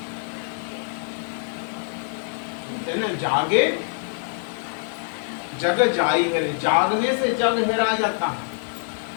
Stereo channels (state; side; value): silent; right; 62 dB below the other